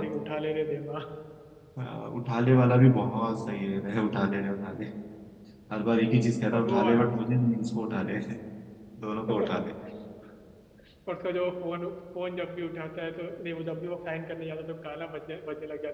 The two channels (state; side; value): identical; both; correlation 1.00